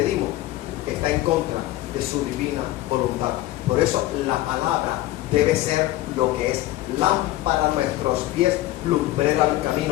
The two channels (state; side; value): quieter; right; 16.1 dB